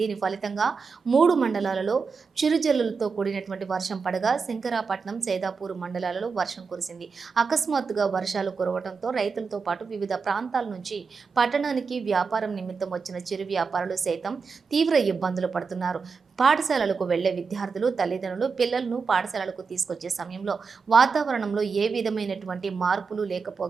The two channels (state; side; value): quieter; left; 5.1 dB